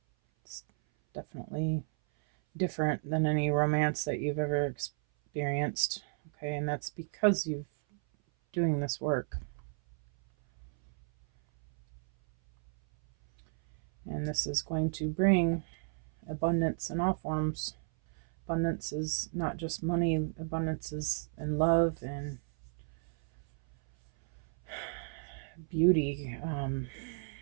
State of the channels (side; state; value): left; silent; 56 dB below the other